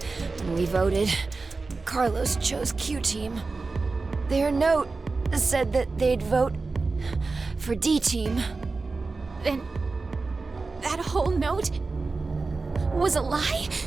When we voted, Carlos chose Q-Team. Their note said that they'd vote for D-Team. Then that whole note was a lie?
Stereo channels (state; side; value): quieter; left; 3.9 dB